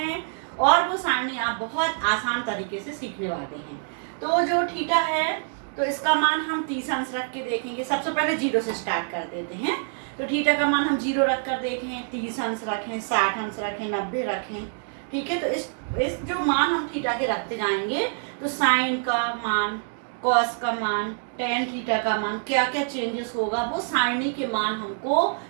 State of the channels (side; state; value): left; silent; 61 dB below the other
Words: और वो सारणी आप बहुत आसान तरीके से सीखने वाले हैं। तो जो थीटा है तो इसका मान हम 30 अंश रख के देखेंगे। सबसे पहले 0 से स्टार्ट कर देते हैं। तो थीटा का मान हम 0 रख कर देखें, 30 अंश रखें, 60 अंश रखें, 90 रखें। ठीक है, तो इस जो मान हम थीटा के रखते जाएंगे तो साइन का मान, कॉस का मान, टेन थीटा का मान, क्या क्या चेंजेस होगा वो सारणी के मान हमको